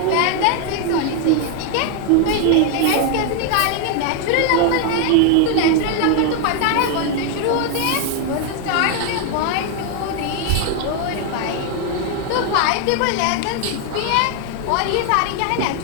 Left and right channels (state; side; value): different; both; correlation 0.00